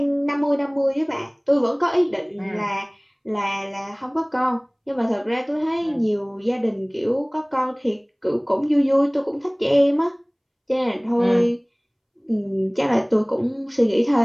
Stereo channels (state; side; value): identical; both; correlation 1.00